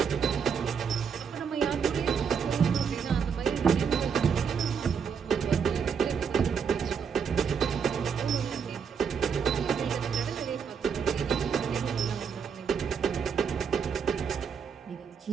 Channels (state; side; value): quieter; left; 6.6 dB